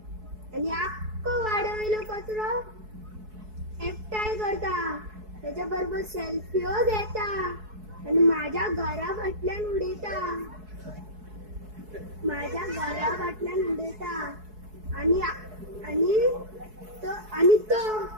आणि अख्खं वाढवलेलं कचरो एकटाय करता, त्याच्याबरोबर सेल्फीओ घेता आणि माझ्या घरा फाटल्यान उडयता, आणि तो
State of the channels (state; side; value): late; left; 4.7 ms